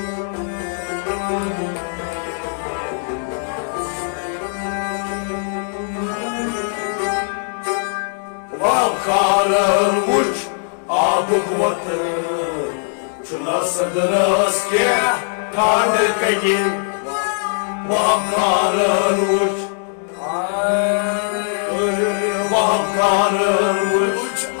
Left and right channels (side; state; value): right; silent; digital silence